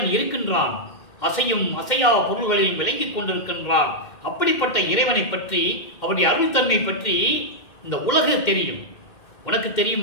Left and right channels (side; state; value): right; late; 2.1 ms